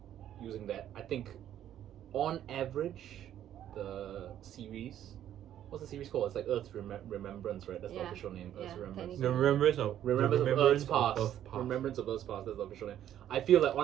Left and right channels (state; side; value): quieter; left; 11.1 dB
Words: using that, I think on average, the series, what's the series called? It's like Earth's Remembrance, right? That's the Yeah. official name. Earth's Yeah, Remembrance. The remembrance of Remembrance of Earth's of past. Earth's past. Remembrance of Earth's past. That's the official name. I feel like